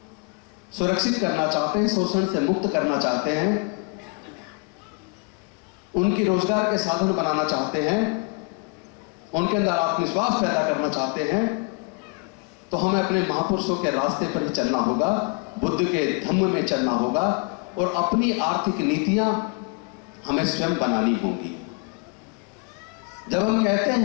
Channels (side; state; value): right; quieter; 32.4 dB